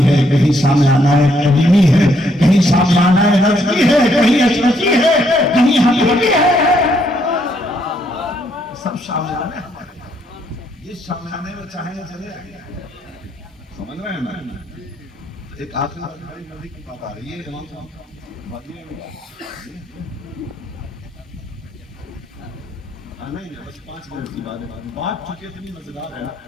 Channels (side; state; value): both; normal; correlation 0.72